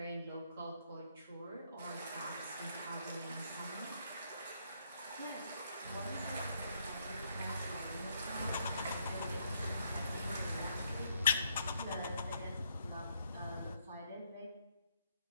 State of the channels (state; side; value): inverted; both; correlation -0.73